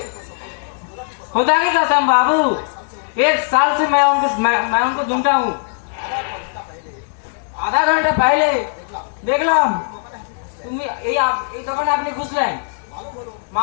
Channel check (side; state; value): right; silent; 65 dB below the other